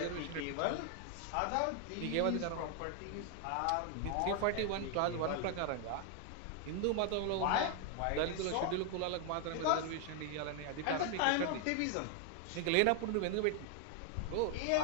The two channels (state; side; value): different; both; correlation 0.00